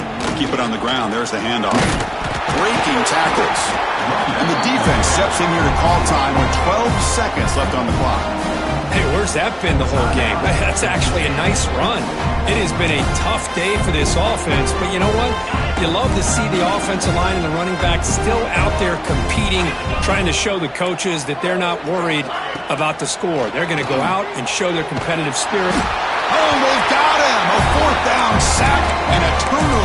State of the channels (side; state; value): both; identical; correlation 1.00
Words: Keep it on the ground. There's the handoff. Breaking tackles. And the defense steps in here to call time with 12 seconds left on the clock. Hey, where's that been the whole game? That's actually a nice run. It has been a tough day for this offense, but you know what? You love to see the offensive line and the running back still out there competing, trying to show the coaches that they're not worried about the score. They're going to go out and show their competitive spirit. Oh, they've got him! A fourth down sack and a